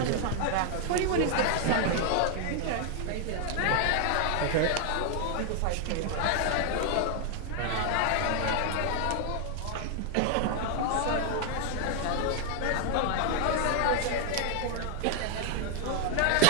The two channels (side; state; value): both; different; correlation 0.00